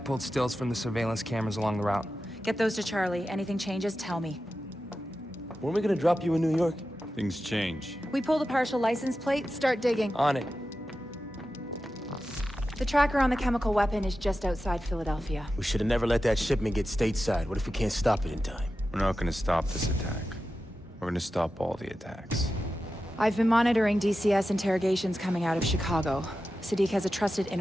stills from the surveillance cameras along the route. Get those to Charlie. Anything changes, tell me. Weren't we gonna drop you in New York? Things change. We pull the partial license plate, start digging. On it. The tracker on the chemical weapon is just outside Philadelphia. We should have never let that shipment get stateside. What if we can't stop it in time? We're not gonna stop this attack. We're gonna stop all the attacks. I've been monitoring DCS interrogations coming out of Chicago. Sadiq has a trusted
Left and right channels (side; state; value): both; normal; correlation 0.92